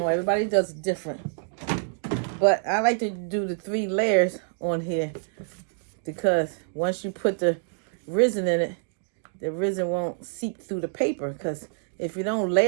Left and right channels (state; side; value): silent; left; digital silence